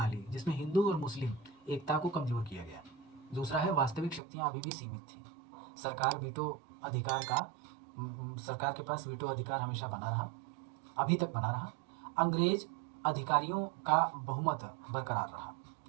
जिसमें हिंदू और मुस्लिम एकता को कमजोर किया गया। दूसरा है वास्तविक शक्तियां अभी भी सीमित थीं। सरकार सरकार के पास वीटो अधिकार हमेशा बना रहा, अभी तक बना रहा। अंग्रेज अधिकारियों का बहुमत बरकरार रहा।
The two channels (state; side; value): drops out; left; at 4.2 s